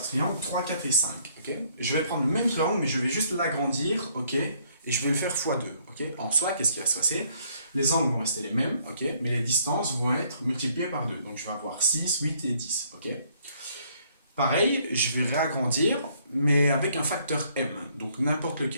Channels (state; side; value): inverted; both; correlation -0.65